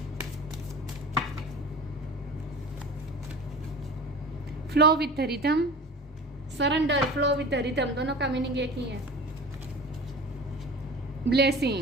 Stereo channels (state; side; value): normal; both; correlation 0.38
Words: Flow with rhythm, surrender, flow with rhythm, दोनों का मीनिंग एक ही है।